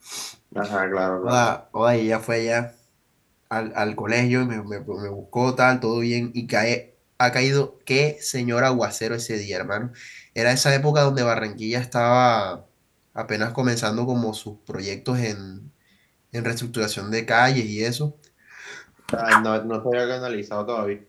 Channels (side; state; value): both; identical; correlation 1.00